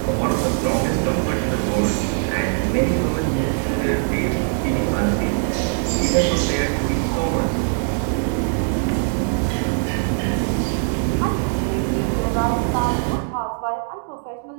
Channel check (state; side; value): silent; left; 62 dB below the other